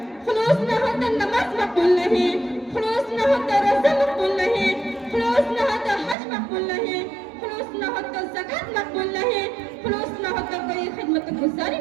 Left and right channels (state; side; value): drops out; left; at 6.2 s